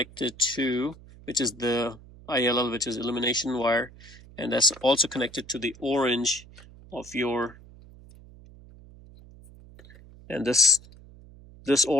to, which is the ILL, which is illumination wire, and that's also connected to the orange of your. And this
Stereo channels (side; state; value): right; noise; hum, 21 dB below the sound